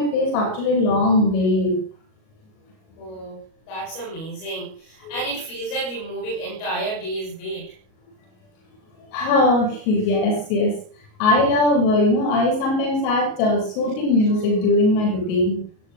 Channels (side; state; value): right; late; 38 ms